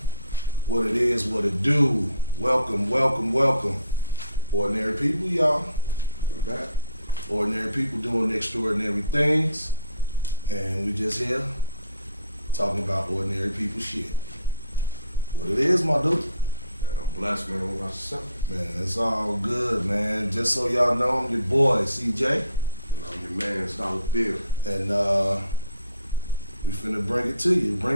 what it is, what it do. Welcome, welcome, welcome. Ordinary people, y'all. We're back. Ordinary people doing extraordinary things. And we just here talking about ordinary people shit. What it is, my dude. I'm blessed, man. What about yourself? Man, it's all good, man. Just so y'all know, I'm your boy, CJ. And I'm your man, Dollar Bill. And we finna bring it to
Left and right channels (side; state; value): both; inverted; correlation -0.59